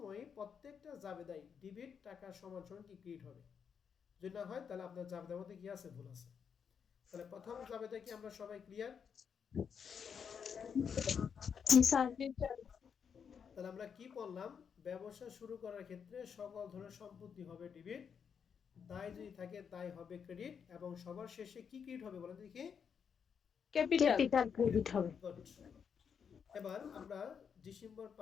প্রত্যেকটা জাবেদাই ডেবিট টাকা সমান সমান কি ক্রেডিট হবে। যদি না হয় তাহলে আপনার জাবেদার মধ্যে কি আছে, ভুল আছে। তাহলে প্রথম জাবেদা কি আমরা সবাই ক্লিয়ার? জি স্যার। জি স্যার। তাহলে আমরা কি বললাম? ব্যবসা শুরু করার ক্ষেত্রে সকল ধরনের সম্পত্তি হবে ডেবিট, দায় যদি থাকে দায় হবে ক্রেডিট, এবং সবার শেষে কি ক্রেডিট হবে বলেন দেখি? ক্যাপিটাল। ক্যাপিটাল ক্রেডিট হবে। গুড। এবার আমরা ডিসেম্বর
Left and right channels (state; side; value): quieter; right; 7.0 dB